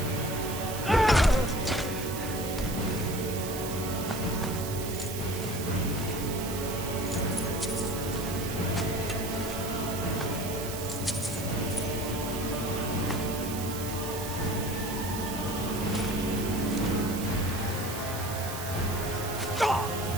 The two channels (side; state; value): right; noise; hiss, 8 dB below the sound